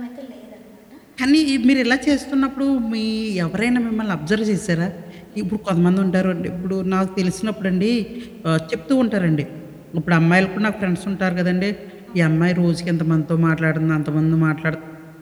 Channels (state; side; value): identical; both; correlation 1.00